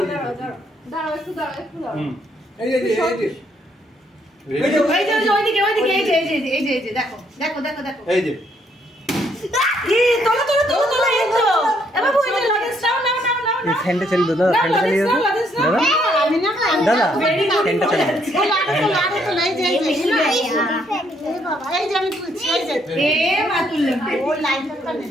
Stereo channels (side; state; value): both; normal; correlation 0.71